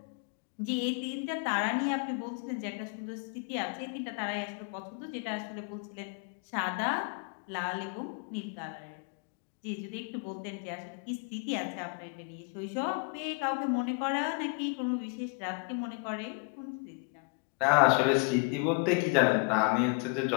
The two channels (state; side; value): quieter; right; 33.6 dB